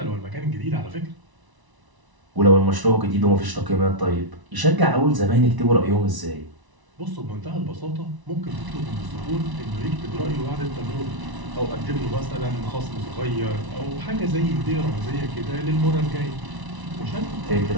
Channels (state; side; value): late; left; 1.0 ms